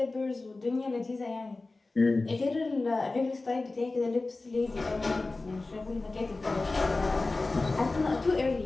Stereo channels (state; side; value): quieter; right; 3.3 dB